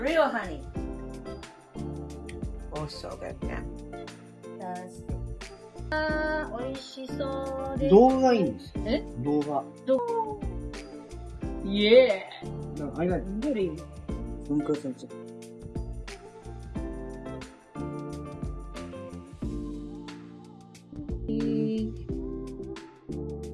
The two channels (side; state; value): both; identical; correlation 1.00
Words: honey. Oh, so good. Yeah. 美味しそうです。動画がいいんです。え？動画。イエー。なんか間にどれ？分割されちゃった。